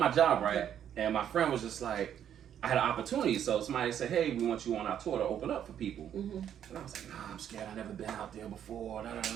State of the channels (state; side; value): quieter; left; 9.7 dB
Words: job, right? And my friend was just like, I had an opportunity. So somebody said, hey, we want you on our tour to open up for people. And I was like, nah, I'm scared. I've never been out there before.